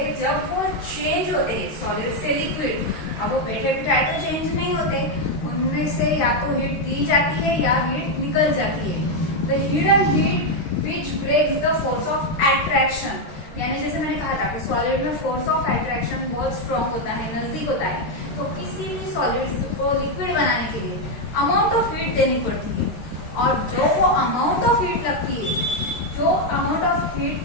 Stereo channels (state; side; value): late; right; 13 ms